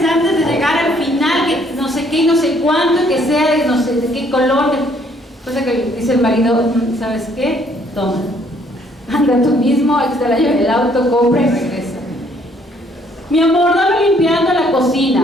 antes de llegar al final, que no sé qué y no sé cuánto, que sea de no sé de qué color. Cosa que dice el marido, ¿sabes qué? Toma, anda tú mismo, ahí está la llave del auto, compra y regresa. Mi amor, dame limpiando la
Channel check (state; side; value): normal; both; correlation 0.64